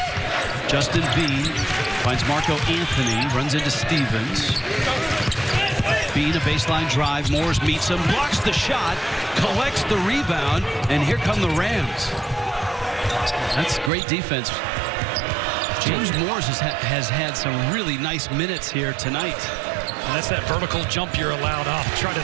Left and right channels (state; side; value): drops out; left; at 13.9 s